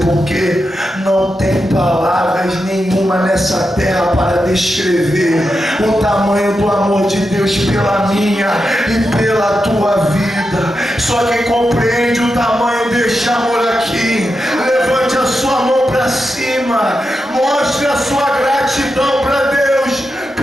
por quê? Não tem palavras nenhuma nessa terra para descrever o tamanho do amor de Deus pela minha e pela tua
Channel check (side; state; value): both; normal; correlation 0.88